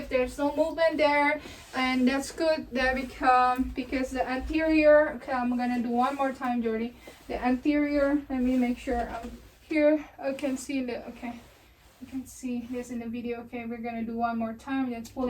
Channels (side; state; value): both; identical; correlation 1.00